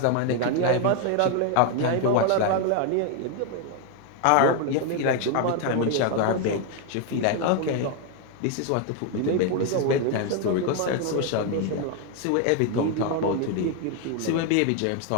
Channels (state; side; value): different; both; correlation 0.01